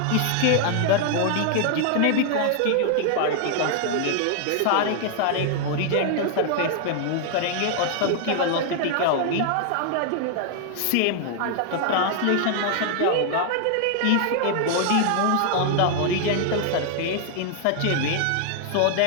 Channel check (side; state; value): both; different; correlation 0.00